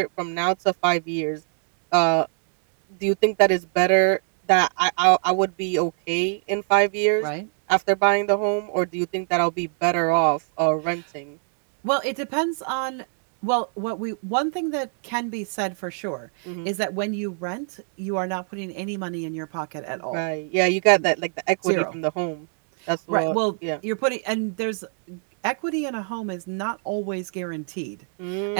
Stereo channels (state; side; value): silent; left; 56 dB below the other